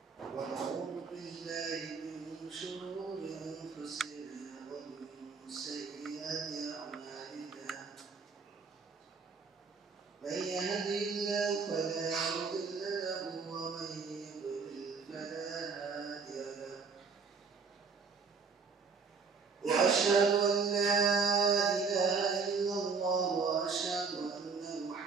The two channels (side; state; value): left; quieter; 5.1 dB